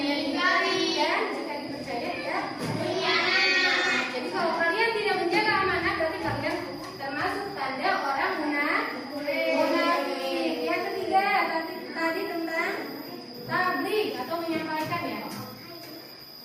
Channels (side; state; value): both; identical; correlation 1.00